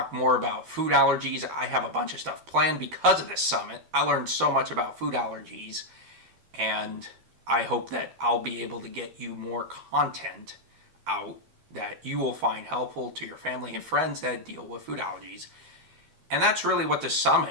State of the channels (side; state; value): left; late; 12 ms